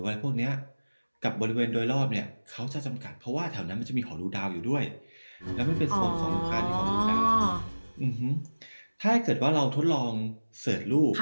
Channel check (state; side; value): inverted; both; correlation -1.00